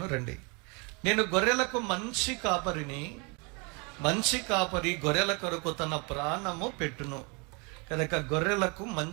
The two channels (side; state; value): left; quieter; 31.7 dB